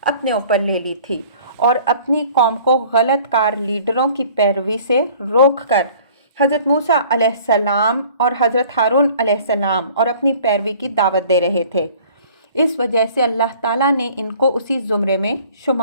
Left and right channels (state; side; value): inverted; both; correlation -0.51